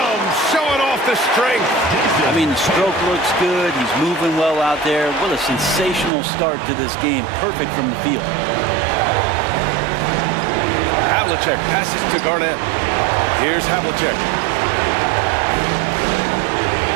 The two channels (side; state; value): left; drops out; at 6.1 s